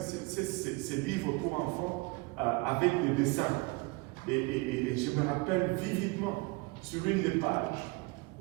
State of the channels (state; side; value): quieter; left; 25.8 dB